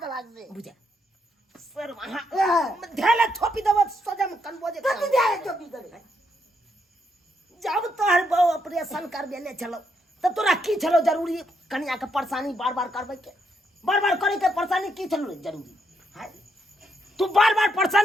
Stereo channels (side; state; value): both; normal; correlation 0.77